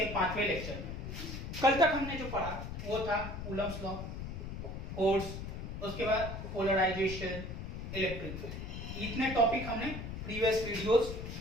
5वें लेक्चर में। कल तक हमने जो पढ़ा वो था कूलम्स लॉ, फोर्स, उसके बाद पोलराइजेशन, इलेक्ट्रिक फील्ड। इतने टॉपिक हमने प्रीवियस वीडियोस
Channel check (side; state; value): left; noise; rumble, 7 dB below the sound